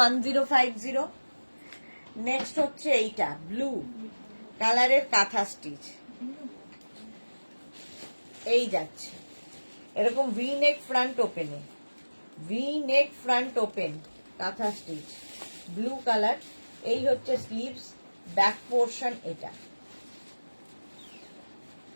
নেক্সট হচ্ছে এইটা ব্লু কালারের কাঁথা স্টিচ, এই যাচ্ছে এরকম ভি নেক ফ্রন্ট ওপেনে, ভি নেক ফ্রন্ট ওপেন কাঁথা স্টিচ ব্লু কালার। এই হচ্ছে স্লিভস, ব্যাক পোর্শন এটা,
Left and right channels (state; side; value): inverted; both; correlation -1.00